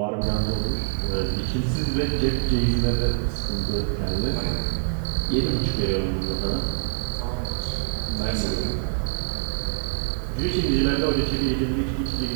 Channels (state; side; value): silent; left; digital silence